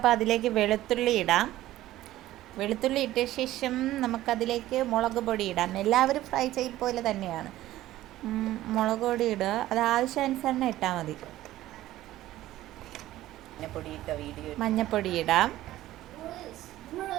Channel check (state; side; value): quieter; left; 15.0 dB